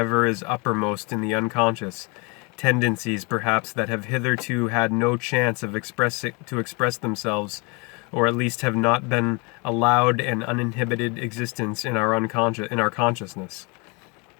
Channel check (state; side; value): quieter; right; 30.1 dB